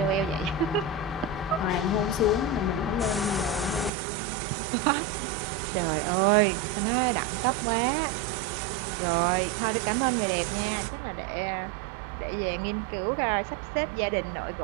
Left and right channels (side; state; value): left; drops out; at 3.9 s